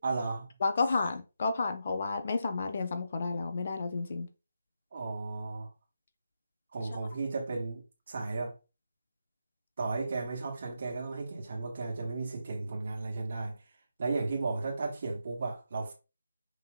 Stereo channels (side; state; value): both; inverted; correlation -0.85